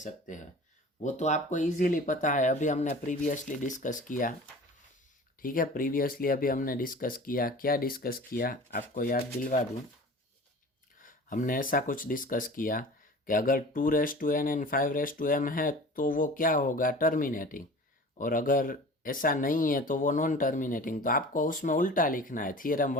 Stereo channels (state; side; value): normal; both; correlation 0.40